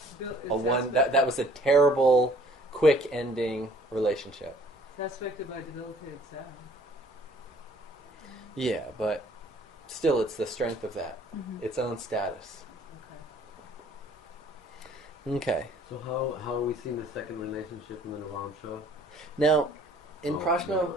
one. That was a terrible, quick ending relationship. It's aspected by debilitated Saturn. Yeah, but still, it's the strength of that, its own status. Okay. Okay. So how are we seeing the second relationship in the Navamsha? Now, in Oh, Prashna,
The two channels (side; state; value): both; normal; correlation 0.56